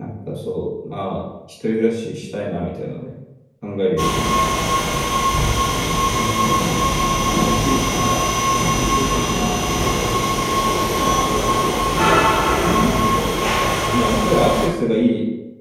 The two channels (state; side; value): identical; both; correlation 1.00